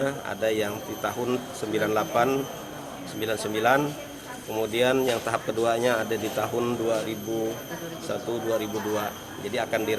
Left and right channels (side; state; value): both; identical; correlation 1.00